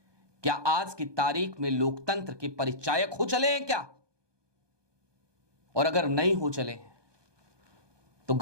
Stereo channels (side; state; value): left; late; 1.2 ms